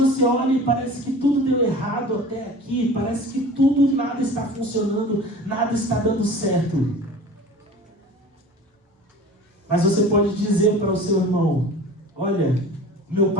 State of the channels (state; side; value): normal; both; correlation 0.40